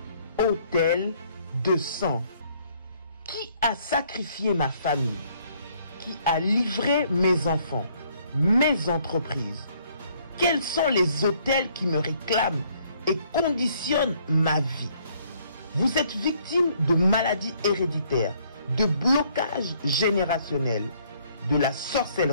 Autel de sang. Qui a sacrifié ma famille? Qui a livré mes enfants, mes entreprises? Quels sont les autels qui me réclament et conditionnent ma vie? Vous êtes victime de maladies héréditaires, de blocages générationnels, de la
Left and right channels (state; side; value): inverted; both; correlation -0.64